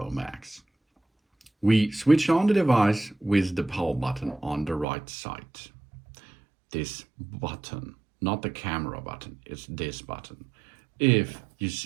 Max. We switch on the device with the power button on the right side. This button, not the camera button, it's this button. If you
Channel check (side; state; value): left; drops out; at 4.9 s